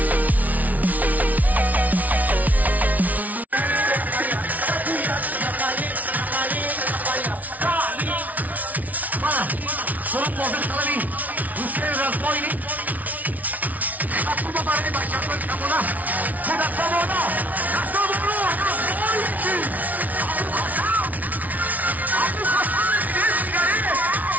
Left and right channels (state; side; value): late; left; 0.074 ms